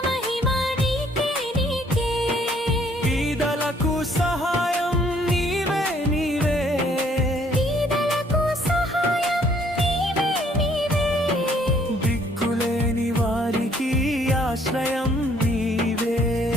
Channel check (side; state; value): both; normal; correlation 0.63